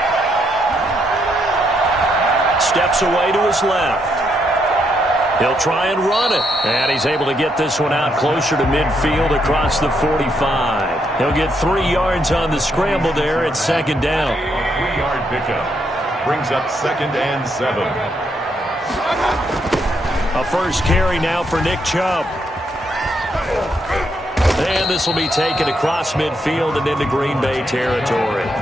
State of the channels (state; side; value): normal; both; correlation 0.77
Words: Steps away to his left. He'll try and run it. And he's able to get this one out closer to midfield across the 45. He'll get 3 yards on the scramble there at second down. 3-yard pickup. Brings up 2nd and 7. A first carry now for Nick Chubb. And this will be taken across midfield and into Green Bay territory.